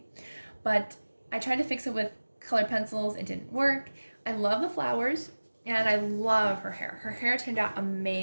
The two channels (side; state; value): both; inverted; correlation -1.00